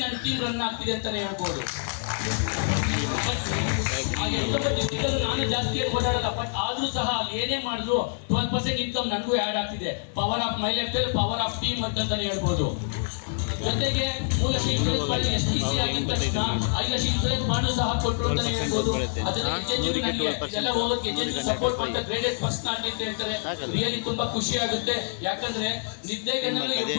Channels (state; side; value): silent; right; digital silence